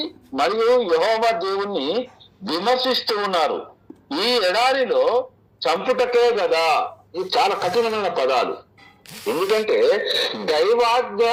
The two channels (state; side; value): identical; both; correlation 1.00